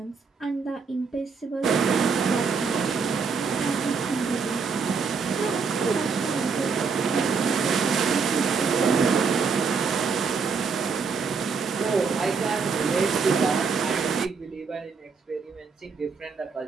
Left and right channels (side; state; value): left; quieter; 5.3 dB